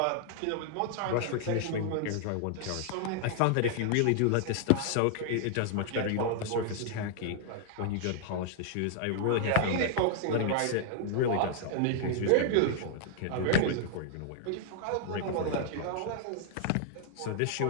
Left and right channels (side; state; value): both; different; correlation 0.00